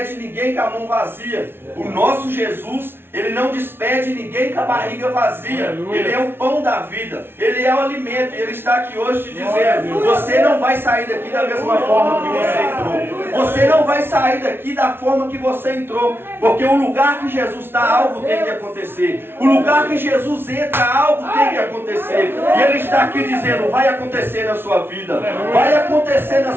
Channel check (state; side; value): late; left; 0.11 ms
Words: ninguém com a mão vazia. O nosso Jesus, ele não despede ninguém com a barriga vazia. Ele é o pão da vida, ele é o alimento, e ele está aqui hoje te dizendo, você não vai sair daqui da mesma forma que você entrou. Você não vai sair daqui da forma que você entrou, porque o lugar que Jesus está, algo tem que acontecer. O lugar que Jesus entra, algo tem que acontecer. E ele está aqui dizendo, vai acontecer na sua vida. Vai acontecer na